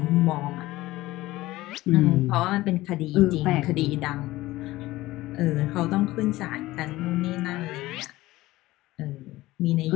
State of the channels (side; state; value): right; quieter; 17.8 dB